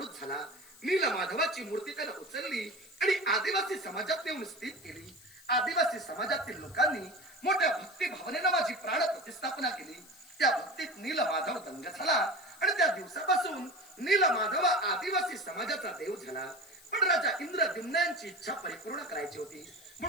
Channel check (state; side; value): noise; left; hiss, 22 dB below the sound